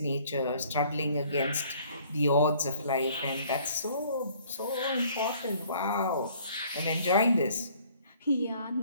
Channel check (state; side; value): inverted; both; correlation -0.58